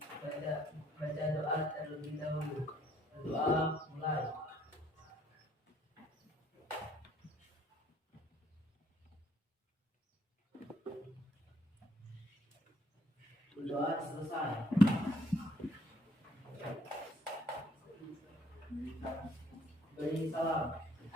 baca doa terlebih dahulu. Doa mulai. Doa selesai. Beri salam.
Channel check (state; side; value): normal; both; correlation 0.65